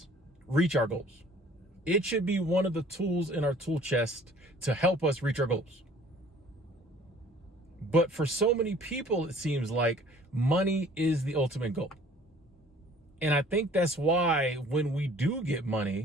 reach our goals. It should be one of the tools in our tool chest to help us reach our goals. But for so many people, it seems like money is the ultimate goal. And I think that's why when we do get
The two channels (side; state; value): both; normal; correlation 0.52